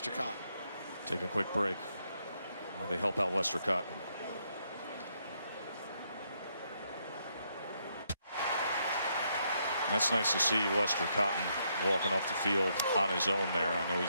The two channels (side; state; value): both; inverted; correlation -0.76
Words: Cotton. Take a quick break while they help out Lester Cotton. That's nice to see Lester Cotton walking off the field on his own there. I know